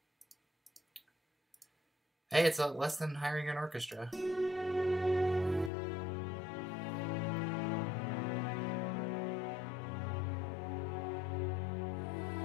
Hey, it's less than hiring an orchestra.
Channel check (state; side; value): drops out; right; at 5.7 s